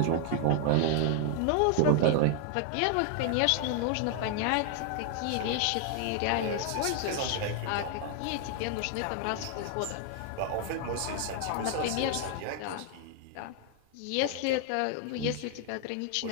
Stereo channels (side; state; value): both; different; correlation 0.00